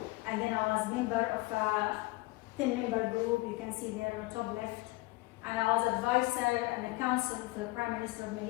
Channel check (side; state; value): right; quieter; 22.3 dB